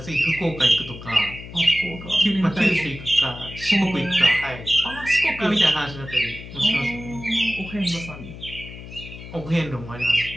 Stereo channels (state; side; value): noise; left; hum, 13 dB below the sound